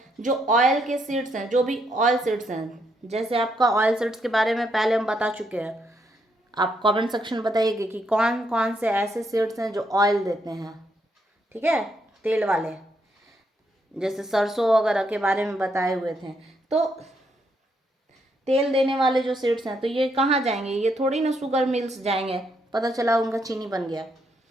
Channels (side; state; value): both; normal; correlation 0.76